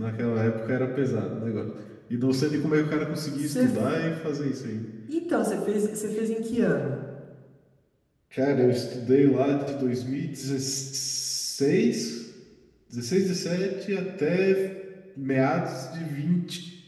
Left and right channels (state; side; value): identical; both; correlation 1.00